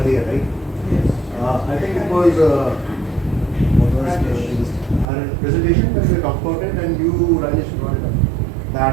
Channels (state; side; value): drops out; left; at 5.1 s